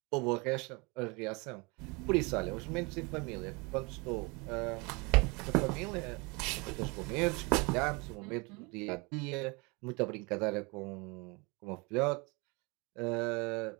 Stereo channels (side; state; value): left; quieter; 28.3 dB